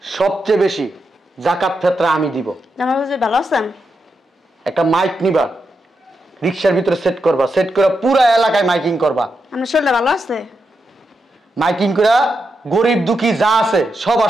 সবচেয়ে বেশি জাকাত ফেতরা আমি দিব। জামাই বাবাজি ভালো আছেন? একটা মাইক নিবা, রিক্সার ভিতরে সেট করবা, সেট করে পুরো এলাকায় মাইকিং করবা। আপনার শরীরটা ভালো আছে? মাইকিং করে গরিব দুঃখী যা আছে সব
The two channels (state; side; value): normal; both; correlation 0.85